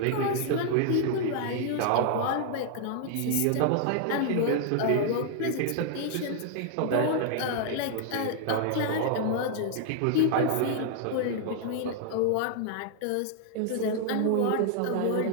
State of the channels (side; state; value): both; different; correlation -0.01